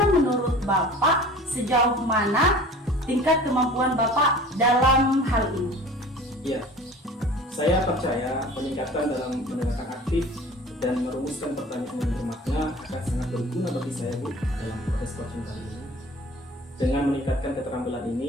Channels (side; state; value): both; normal; correlation 0.43